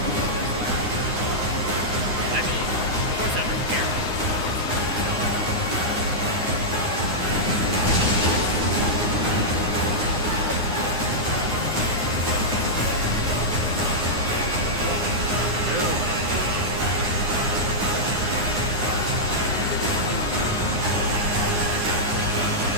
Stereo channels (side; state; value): left; late; 9.7 ms